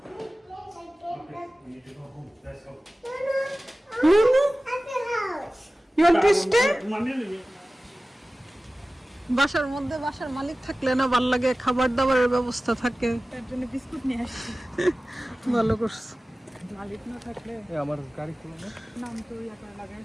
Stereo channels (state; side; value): normal; both; correlation 0.97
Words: Like that. We need to go home. Let's go. No. I feel house. you want to stay? Mummy, বাসার মধ্যে বাসার মালিক থাকলে না ভাল লাগে, খাবার দাবারের ব্যবস্থা থাকে। তার জন্য বিস্কুট নিয়ে আসছি। ভালো করছে। মালিক না থাকলে আমার গাড়ি খুলো না। নাম তো ইয়াটা লাগাই